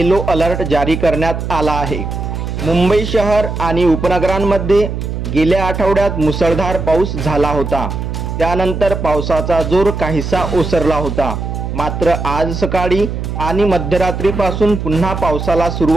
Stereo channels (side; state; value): right; noise; hum, 5 dB below the sound